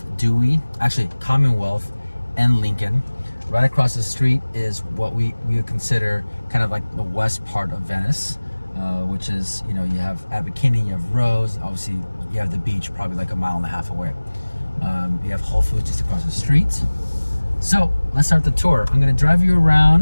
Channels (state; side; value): inverted; both; correlation -1.00